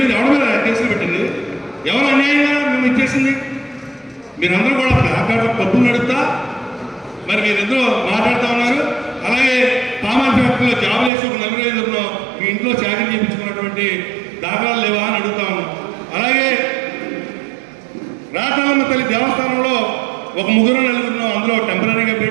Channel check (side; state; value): left; drops out; at 11.1 s